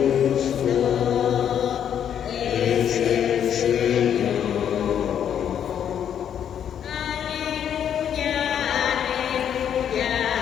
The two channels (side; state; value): right; quieter; 9.1 dB